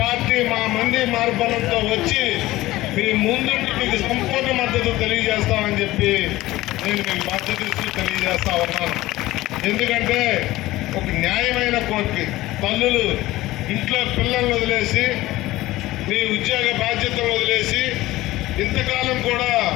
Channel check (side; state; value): right; quieter; 17.4 dB